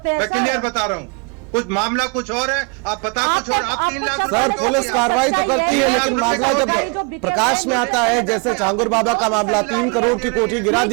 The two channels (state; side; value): quieter; left; 33.6 dB